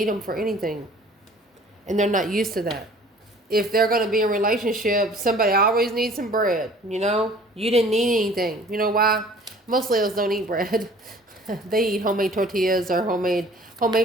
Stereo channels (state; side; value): normal; both; correlation 0.50